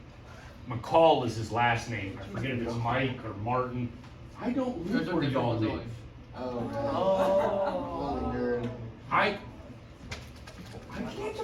McCall is his last name. I forget if it's Mike or Martin. I don't live where y'all live. I can't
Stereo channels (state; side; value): identical; both; correlation 1.00